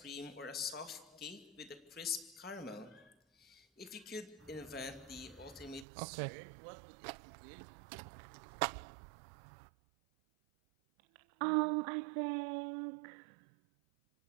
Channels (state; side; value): drops out; left; at 5.9 s